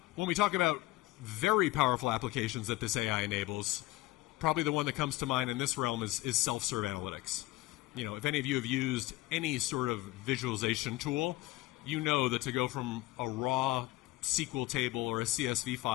when we talk about very powerful applications that this AI enables, probably the one that comes to mind in this realm is self-serve analytics. If any of you have used any sort of visualization tool, you know that to go from a raw SQL table or a CSV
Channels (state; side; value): quieter; right; 18.9 dB